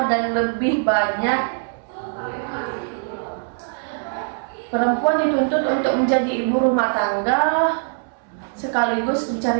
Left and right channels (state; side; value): silent; left; 64 dB below the other